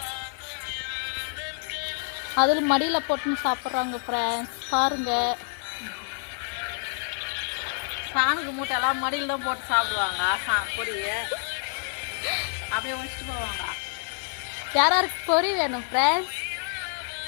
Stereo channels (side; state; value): right; silent; digital silence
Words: அதில் மடியில் போட்டுன்னு சாப்பிட்றாங்க ஃப்ரெண்ட்ஸ். பாருங்க, சாமிக்கு மூட்டையெல்லாம் மடியில் தான் போட்டு சாப்பிடுவாங்க. பொரிய அப்படியே வச்சுட்டு போவாங்க. யாருக்கு பொறி வேணும் ஃப்ரெண்ட்ஸ்?